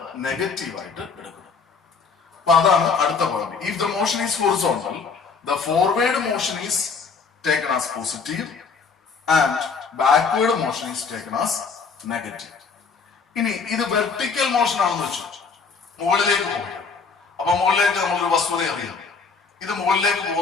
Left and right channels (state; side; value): quieter; right; 5.1 dB